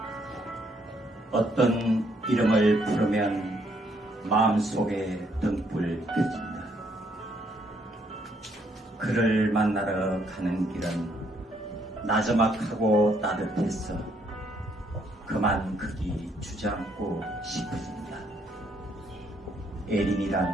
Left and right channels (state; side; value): normal; both; correlation 0.70